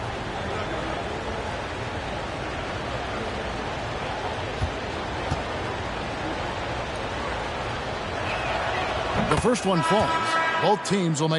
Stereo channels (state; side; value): identical; both; correlation 1.00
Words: The first one falls. Both teams will